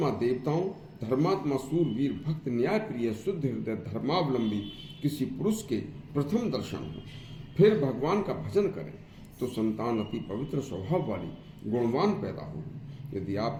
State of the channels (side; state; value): both; identical; correlation 1.00